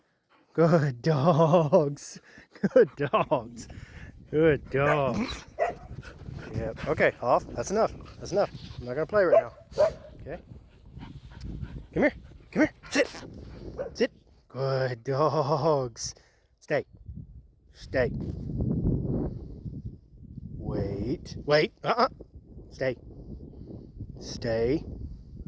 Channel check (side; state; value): both; identical; correlation 1.00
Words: Good dogs. Good dogs. Good dogs. Yep. Okay, off. That's enough. That's enough. I'm not gonna play right now. Okay. Come here. Come here. Sit. Good dogs. Stay. Wait.